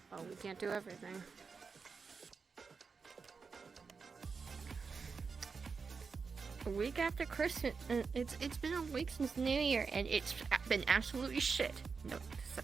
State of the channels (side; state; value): left; quieter; 5.1 dB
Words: Oh, we can't do everything. A week after Christmas, it's been a week since New Year, and it's been absolutely shit. No